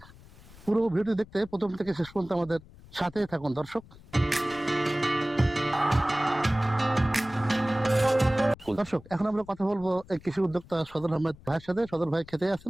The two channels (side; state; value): left; noise; rumble, 22 dB below the sound